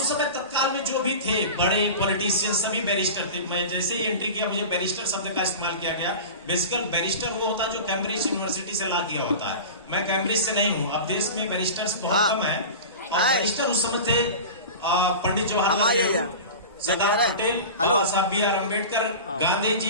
समय तत्काल में जो भी थे बड़े पॉलिटिशियन, सभी बैरिस्टर थे। मैं जैसे ही एंट्री किया, मुझे बैरिस्टर शब्द का इस्तेमाल किया गया। बेसिकल बैरिस्टर वो होता है जो कैम्ब्रिज यूनिवर्सिटी से ला किया होता है। मैं कैम्ब्रिज से नहीं हूँ। अब देश में बैरिस्टर्स बहुत कम है। बैरिस्टर उस समय थे पंडित जवाहरलाल नेहरू, सरदार पटेल, बाबा साहब बी आर अम्बेडकर, गांधी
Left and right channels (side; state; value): both; inverted; correlation -0.32